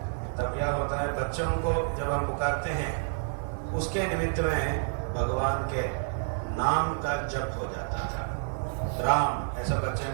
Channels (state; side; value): silent; left; digital silence